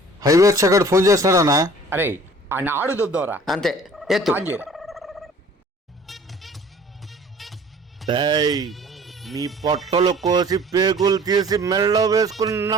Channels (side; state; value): both; normal; correlation 0.50